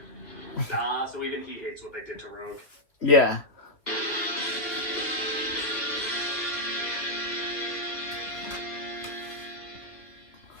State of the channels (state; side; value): late; right; 2.5 ms